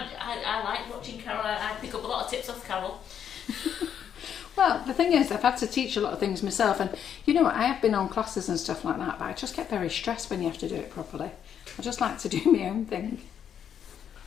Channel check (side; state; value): right; quieter; 8.7 dB